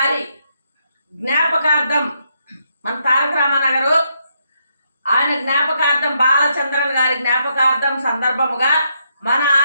జ్ఞాపకార్థం మన తారక రామానగరు ఆయన జ్ఞాపకార్థం బాలచంద్రన్ గారి జ్ఞాపకార్థం సందర్భముగా మన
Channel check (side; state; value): both; inverted; correlation -0.78